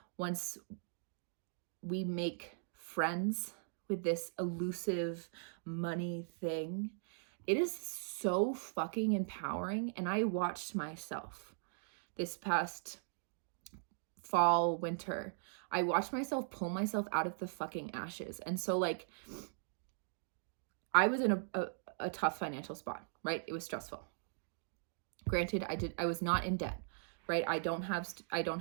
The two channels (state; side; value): silent; left; digital silence